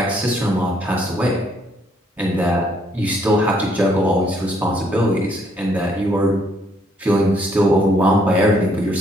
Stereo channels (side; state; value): both; normal; correlation 0.68